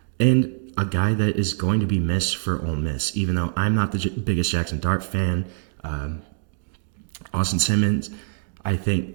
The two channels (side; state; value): left; silent; digital silence